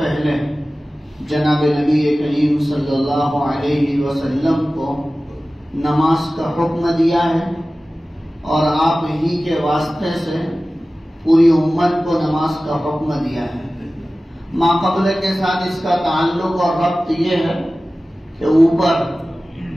جناب نبی کریم صلی اللہ علیہ وسلم کو نماز کا حکم دیا ہے، اور آپ ہی کے واسطے سے پوری امت کو نماز کا حکم دیا ہے۔ ما قبل کے ساتھ اس کا تعلق اور ربط یہ ہے کہ اوپر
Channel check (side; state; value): both; normal; correlation 0.96